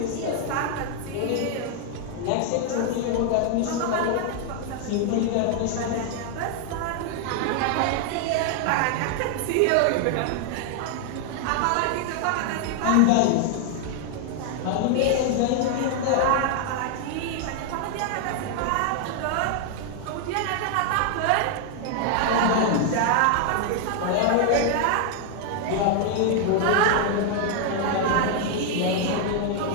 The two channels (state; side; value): different; both; correlation 0.00